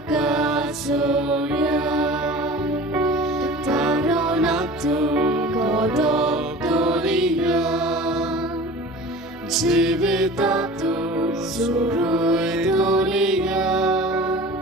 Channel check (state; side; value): normal; both; correlation 0.39